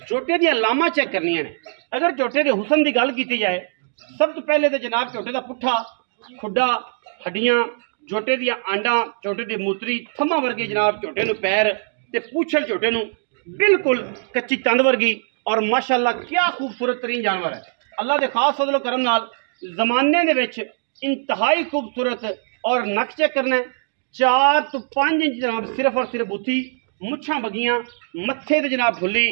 झोटे दी लामा चेक करनी ने। अगर झोटे के हुसन की गल की जाए, सब तो पहले तो जनाब झोटे का पुट्ठा खुडा हड्डियां, झोटे दियां आंडा, झोटे की मूतरी, थम्मा वर्गी जनाब झोटे नूं पैर ते पूछल झोटे नूं बिल्कुल कच्ची तंद वर्गी। और माशाल्लाह क्या खूबसूरत तरीन जानवर है। अल्लाह के खास फजलो करम नाल जमाने दे विच इंतहाई खूबसूरत। और नक चेक करना है, 4 तो 5 इंच जनाब सिर्फ और सिर्फ बुत्थी, मुछां बगियां, मत्थे ते जनाब फुल्ली,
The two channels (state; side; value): silent; left; digital silence